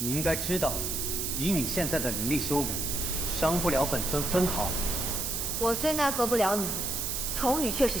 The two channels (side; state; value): right; noise; hiss, 1 dB below the sound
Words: 应该知道，以你现在的灵力修为，伤不了本尊分毫。我虽奈何不了你，重羽却是